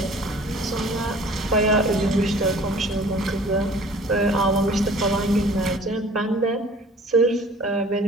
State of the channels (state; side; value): normal; both; correlation 0.49